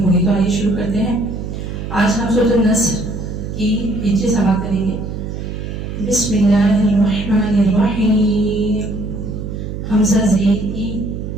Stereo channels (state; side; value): noise; right; hum, 7 dB below the sound